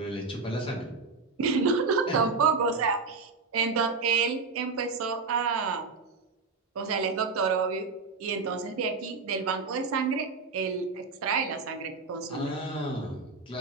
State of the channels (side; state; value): left; quieter; 4.4 dB